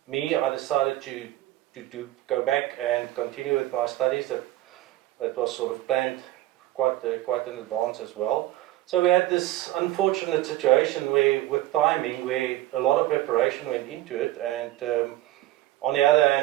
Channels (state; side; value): quieter; left; 15.5 dB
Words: I decided to go back and continue with my studies. That was sort of planned quite in advance as well. So we had this unfortunate situation with timing, where a lot of preparation went into it, and on the other